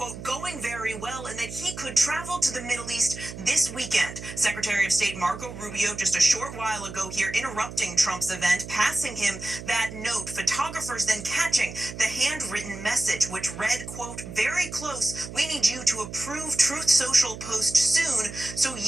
going very well, and that he could travel to the Middle East this weekend. Secretary of State Marco Rubio just a short while ago here interrupting Trump's event, passing him that note. Photographers then catching the handwritten message, which read, quote, very close. We need you to approve Truth Social post soon so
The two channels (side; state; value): right; noise; hum, 11 dB below the sound